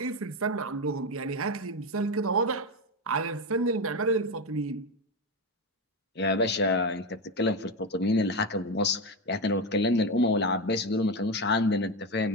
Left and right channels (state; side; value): normal; both; correlation 0.13